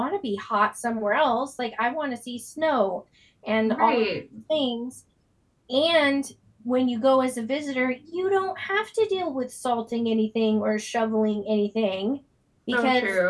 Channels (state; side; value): identical; both; correlation 1.00